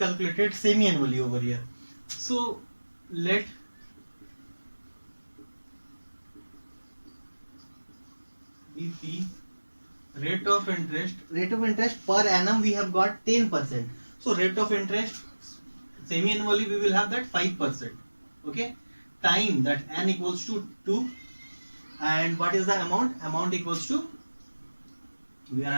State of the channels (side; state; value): both; inverted; correlation -1.00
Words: semi-annually over here. So let BP rate of interest per annum we have got 10%. So rate of interest semi-annually we will have that 5%. Okay, time, that n equals to 2, and what is the amount equals to, we are